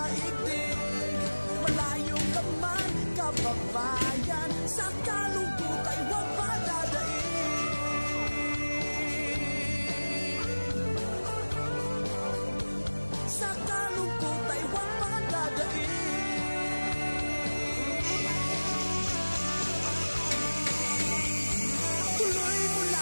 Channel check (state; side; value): inverted; both; correlation -1.00